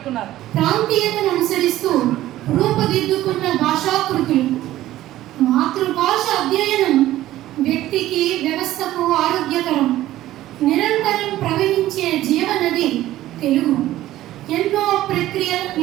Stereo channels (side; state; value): left; quieter; 14.6 dB